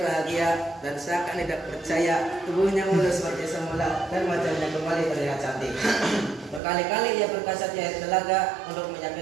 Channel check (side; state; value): left; drops out; at 6.6 s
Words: dan seakan tidak percaya tubuhnya mulus seperti semula dan wajahnya kembali terlihat cantik. Berkali-kali ia berkasat di air telaga untuk